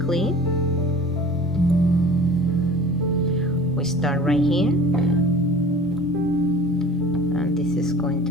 we start right here, and this is going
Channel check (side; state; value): both; normal; correlation 0.43